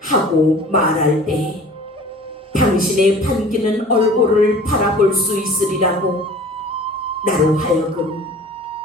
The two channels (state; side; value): normal; both; correlation 0.45